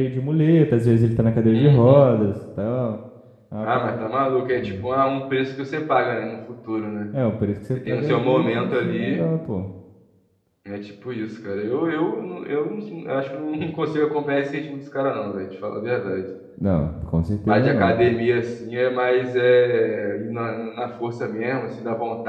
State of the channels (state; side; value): identical; both; correlation 1.00